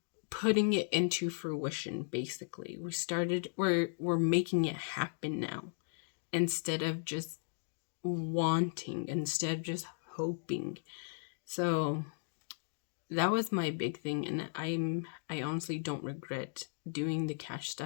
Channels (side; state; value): right; silent; digital silence